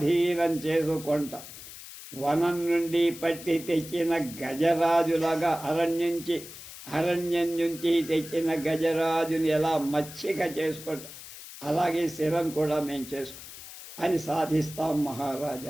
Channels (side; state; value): left; noise; hiss, 14 dB below the sound